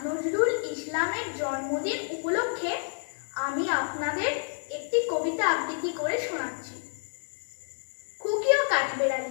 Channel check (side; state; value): right; silent; digital silence